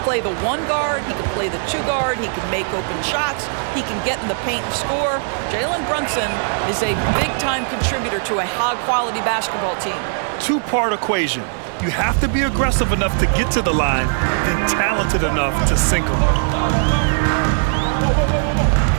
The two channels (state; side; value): silent; left; 66 dB below the other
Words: play the 1 guard. He can play the 2 guard. He can make open shots. He can get in the paint and score. Jalen Brunson is a big-time contributor to a high-quality basketball team. 2-part equation. You have to be aggressive enough to get to the line, then talented enough to sink them.